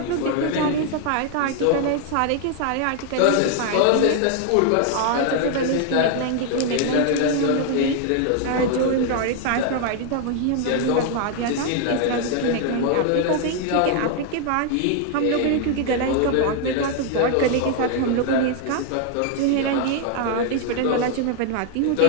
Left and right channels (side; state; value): both; different; correlation 0.00